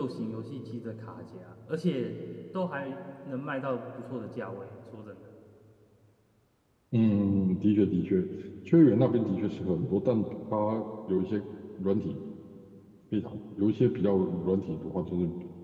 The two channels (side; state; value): both; identical; correlation 1.00